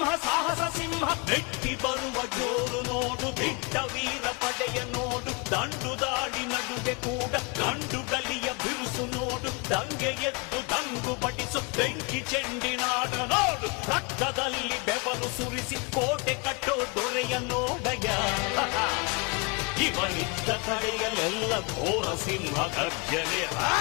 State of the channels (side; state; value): right; quieter; 30.4 dB